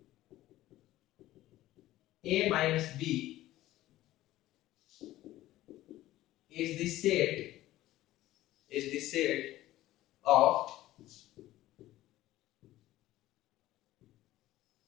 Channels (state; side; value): quieter; right; 15.5 dB